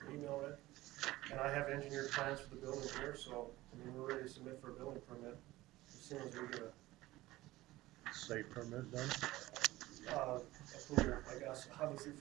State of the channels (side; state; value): left; quieter; 17.8 dB